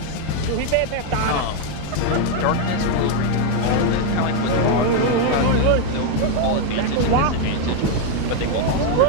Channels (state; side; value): different; both; correlation 0.01